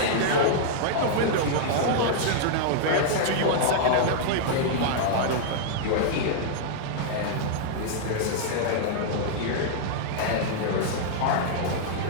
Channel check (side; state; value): both; different; correlation -0.01